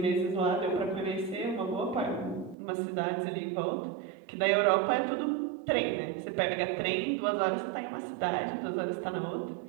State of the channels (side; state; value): left; drops out; at 2.6 s